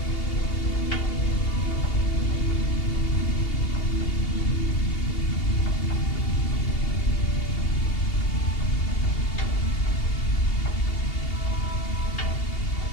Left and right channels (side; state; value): right; late; 2.8 ms